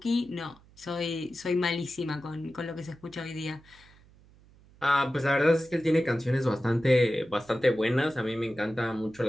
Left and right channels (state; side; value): noise; right; hum, 27 dB below the sound